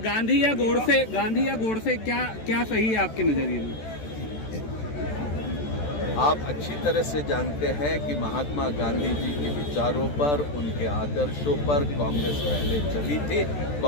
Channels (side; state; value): right; late; 14 ms